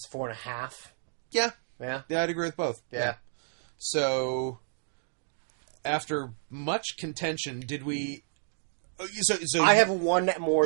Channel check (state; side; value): silent; left; digital silence